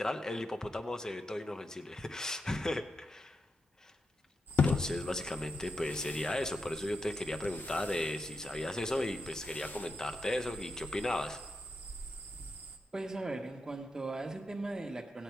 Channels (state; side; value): normal; both; correlation 0.86